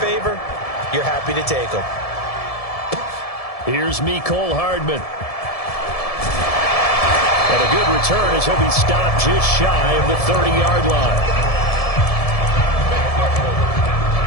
you're happy to take them. Here's Mecole Hardman. And a good return as he'll be stopped just shy of the 30-yard line.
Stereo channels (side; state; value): right; late; 1.7 ms